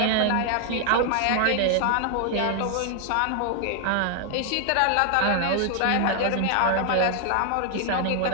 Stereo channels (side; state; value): both; different; correlation 0.00